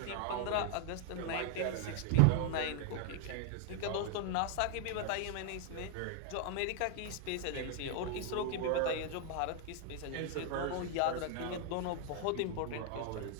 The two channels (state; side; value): different; both; correlation 0.00